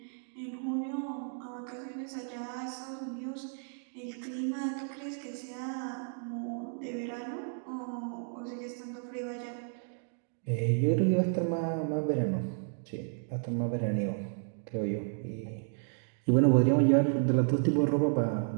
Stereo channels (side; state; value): left; silent; 56 dB below the other